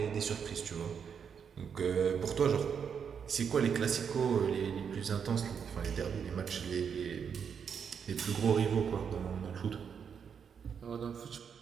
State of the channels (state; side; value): quieter; left; 7.1 dB